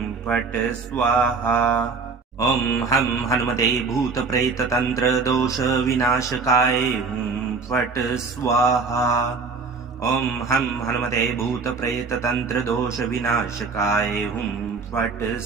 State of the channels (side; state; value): left; quieter; 4.6 dB